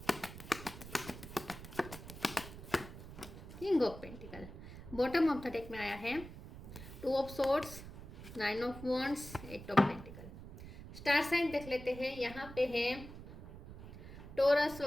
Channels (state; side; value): noise; right; rumble, 13 dB below the sound